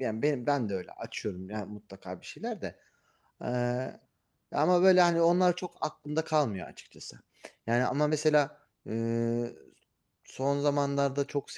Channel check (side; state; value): both; identical; correlation 1.00